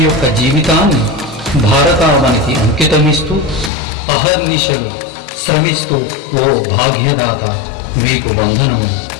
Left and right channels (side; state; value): right; drops out; at 3.7 s